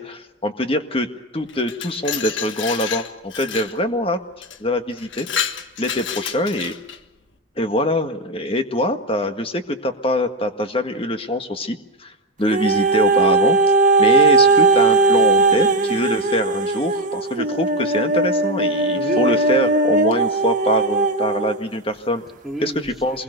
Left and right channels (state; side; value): normal; both; correlation 0.11